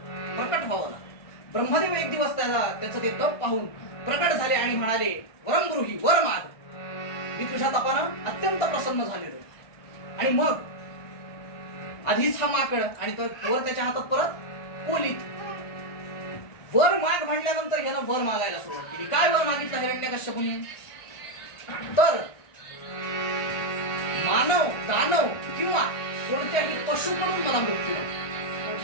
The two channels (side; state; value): right; late; 1.5 ms